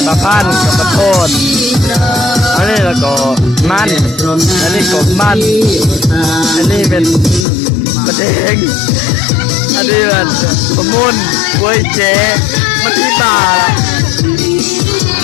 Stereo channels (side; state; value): right; drops out; at 7.5 s